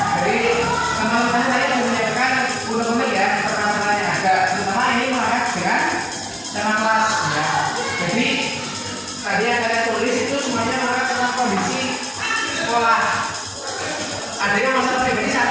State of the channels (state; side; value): identical; both; correlation 1.00